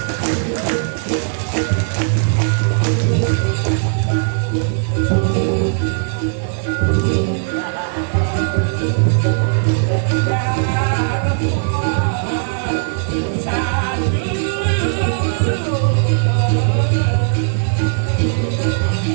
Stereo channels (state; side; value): silent; left; 56 dB below the other